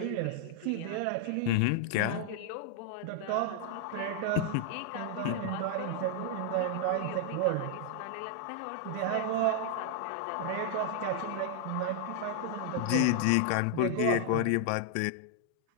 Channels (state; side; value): different; both; correlation 0.00